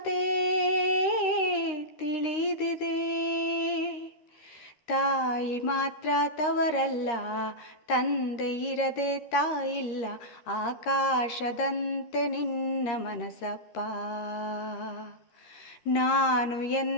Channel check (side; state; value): right; late; 13 ms